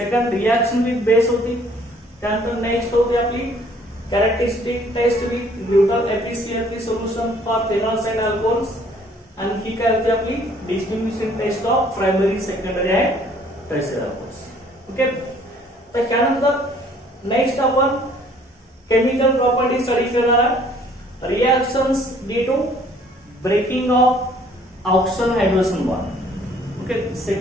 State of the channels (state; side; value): normal; both; correlation 0.59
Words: रिएक्शन विथ बेस होती, त्यानंतर नेक्स्ट होती आपली characteristic test with neutral efficiency solution for phenols and alcohols, आणि ही काय होती आपली distinguishing test of primary, secondary and tertiary alcohols. Okay, तर त्यानंतर नेक्स्ट आपण केमिकल प्रॉपर्टी स्टडी करणार आहे. Reactions due to breaking of oxygen hydrogen bond. Okay,